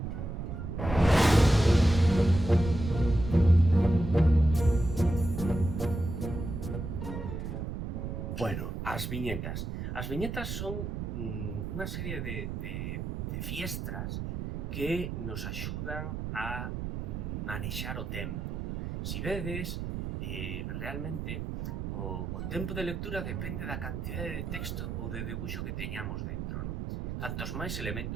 Bueno, as viñetas. As viñetas son unha serie de fiestras que nos axudan a manexar o tempo. Si vedes, realmente o tempo de lectura depende da cantidade de texto ou de debuxo que teñamos dentro, non? Cantos máis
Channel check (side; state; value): right; noise; rumble, 4 dB below the sound